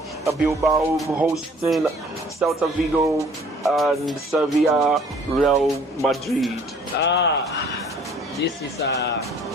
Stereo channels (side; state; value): both; normal; correlation 0.55